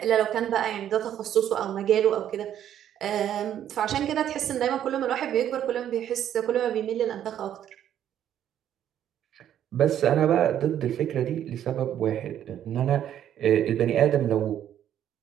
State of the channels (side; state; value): left; quieter; 10.5 dB